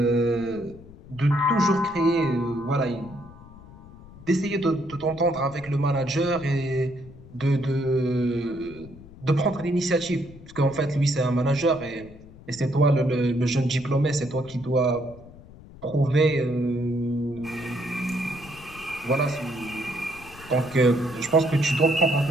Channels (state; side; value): noise; left; rumble, 19 dB below the sound